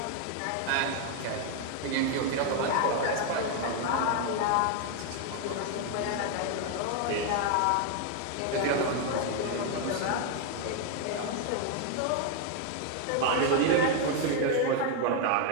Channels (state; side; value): different; both; correlation 0.00